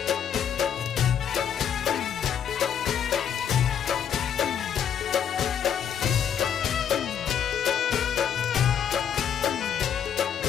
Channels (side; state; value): right; quieter; 8.5 dB